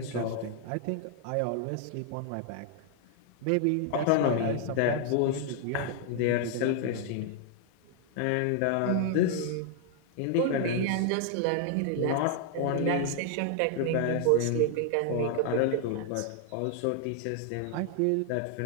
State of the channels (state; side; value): different; both; correlation 0.00